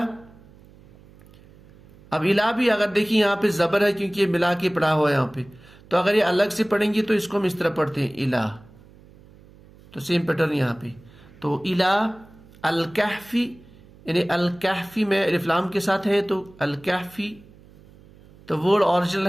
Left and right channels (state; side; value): noise; right; hum, 24 dB below the sound